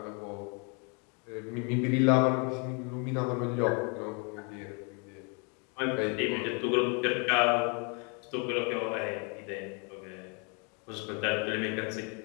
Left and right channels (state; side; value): quieter; right; 35.6 dB